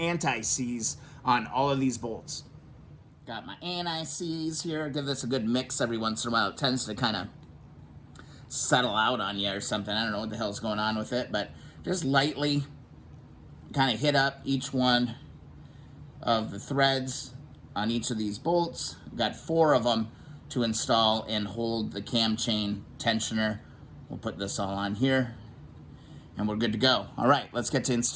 on all of these bolts. Got my anti-seize here. Give this a good mix every once in a while. It tends to kind of settle out on you or something. I don't know what the hell's going on with it, but just lightly kind of hit up each one of the threads on each of these bolts. Got 4 of them to install and hold the cam chain tensioner. We'll put this all on here and we're good to go. All right, let's get to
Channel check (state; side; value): identical; both; correlation 1.00